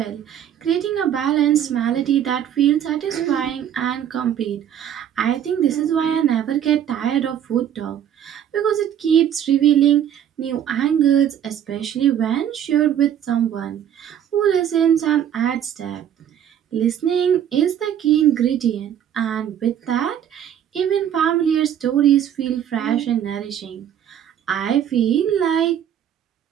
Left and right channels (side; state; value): left; quieter; 9.8 dB